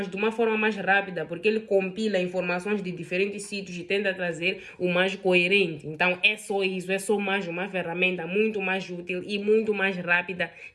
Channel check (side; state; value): both; identical; correlation 1.00